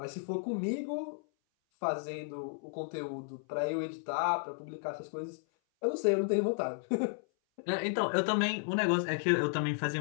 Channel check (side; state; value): right; silent; 55 dB below the other